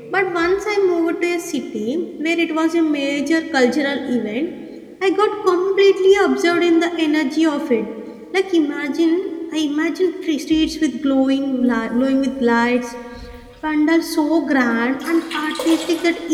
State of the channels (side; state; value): both; identical; correlation 1.00